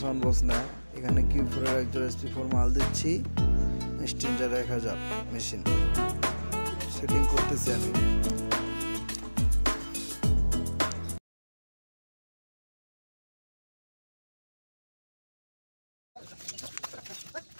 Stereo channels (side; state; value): both; inverted; correlation -1.00